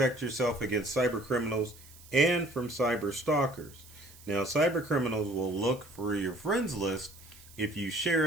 yourself against cyber criminals and from cyber stalkers. Now, cyber criminals will look for your friends list if you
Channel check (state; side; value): noise; right; hiss, 22 dB below the sound